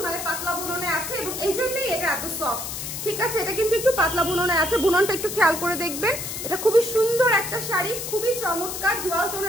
মানে পাতলা বুননে আছে এবং এই জন্যই এটা এত সফট, ঠিক আছে? এটা কিন্তু একটু পাতলা বুননে আছে, বুননটা একটু খেয়াল করে দেখবেন। এটা খুবই সুন্দর একটা শাড়ি, খুবই চমৎকার ডুয়াল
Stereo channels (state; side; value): noise; left; hiss, 6 dB below the sound